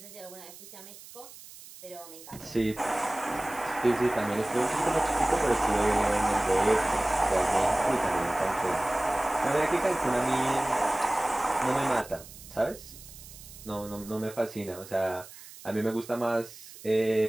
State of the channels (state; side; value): noise; right; hiss, 17 dB below the sound